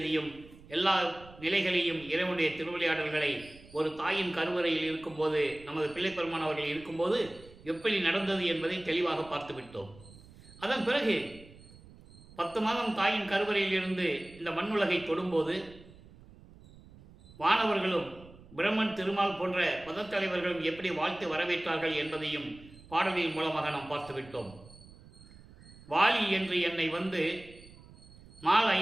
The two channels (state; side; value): noise; right; rumble, 21 dB below the sound